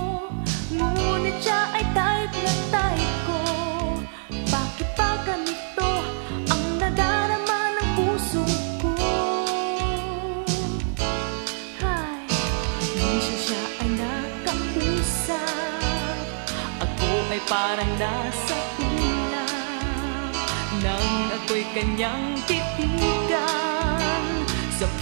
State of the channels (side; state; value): left; silent; digital silence